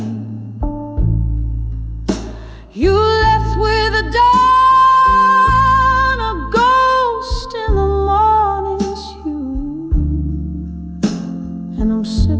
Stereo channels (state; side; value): identical; both; correlation 1.00